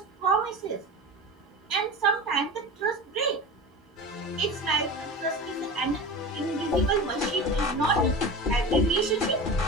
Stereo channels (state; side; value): normal; both; correlation 0.30